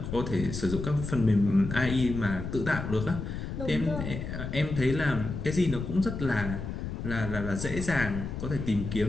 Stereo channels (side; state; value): left; noise; rumble, 6 dB below the sound